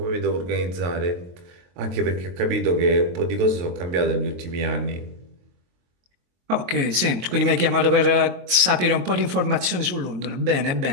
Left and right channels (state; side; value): late; left; 22 ms